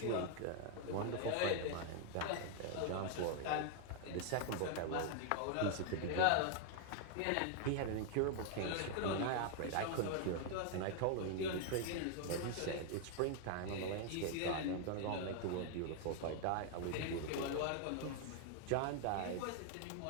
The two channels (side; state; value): both; different; correlation 0.00